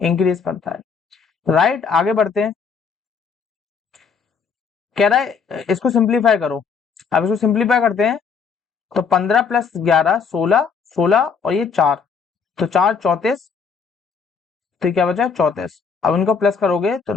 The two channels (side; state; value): right; quieter; 5.8 dB